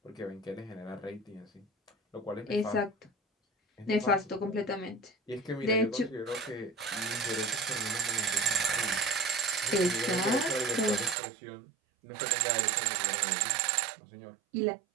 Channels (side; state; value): left; drops out; at 11.2 s